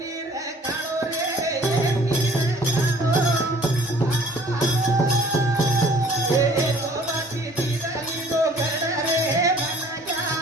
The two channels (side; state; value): both; normal; correlation 0.54